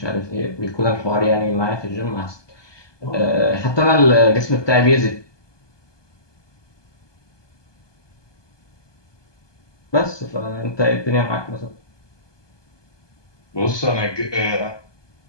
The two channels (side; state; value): right; late; 1.2 ms